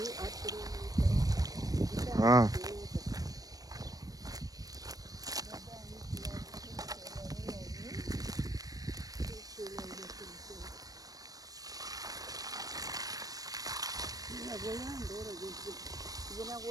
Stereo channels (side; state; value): left; late; 0.18 ms